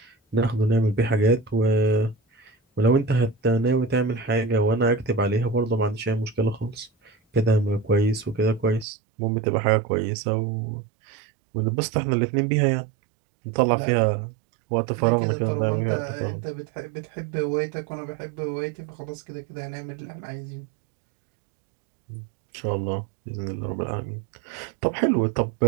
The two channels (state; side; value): drops out; left; at 8.8 s